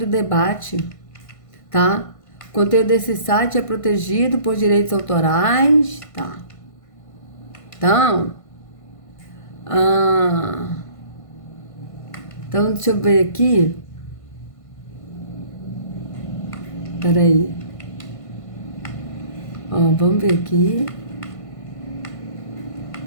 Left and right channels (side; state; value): right; late; 1.5 ms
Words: debate. Tá? O conteúdo desse site é protegido por direitos autorais. Tá? Então, deixa eu ver aqui. Peraí. Ó, vamos ver aqui.